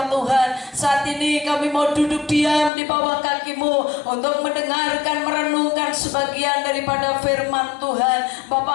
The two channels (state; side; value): drops out; right; at 2.7 s